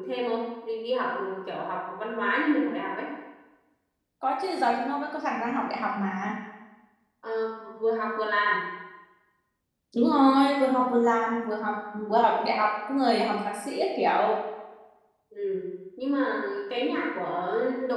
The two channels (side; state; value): both; identical; correlation 1.00